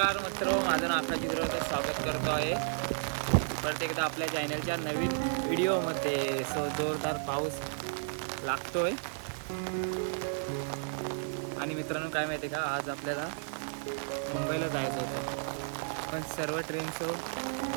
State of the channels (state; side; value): silent; left; digital silence